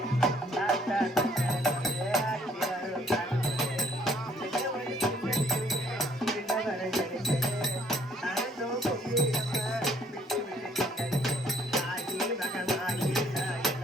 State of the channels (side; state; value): both; normal; correlation 0.63